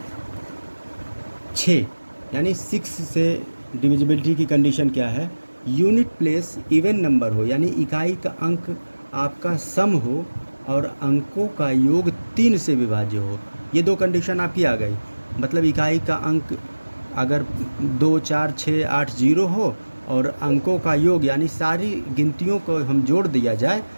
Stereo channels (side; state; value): both; inverted; correlation -1.00